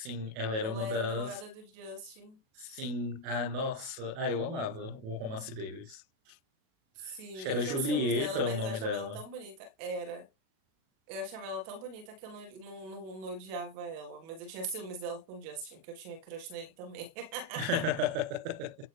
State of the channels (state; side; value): late; left; 37 ms